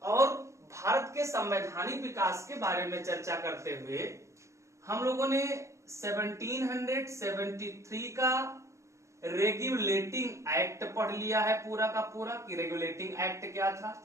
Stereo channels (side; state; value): left; late; 0.14 ms